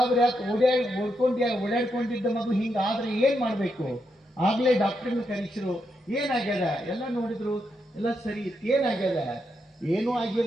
ಆಯ್ತು. ಓಡಾಡ್ಕೊಂಡಿದ್ದ ಮಗು ಹಿಂಗಾದ್ರೆ ಏನ್ ಮಾಡ್ಬೇಕು? ಆಗ್ಲೇ ಡಾಕ್ಟರ್ನ ಕರೆಸಿರು. ಏನಾಗ್ಯದ? ಎಲ್ಲ ನೋಡಿದ್ರು, ಎಲ್ಲ ಸರಿ ಇತ್ತು. ಏನಾಗ್ಯದ? ಏನೂ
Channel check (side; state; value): both; normal; correlation 0.82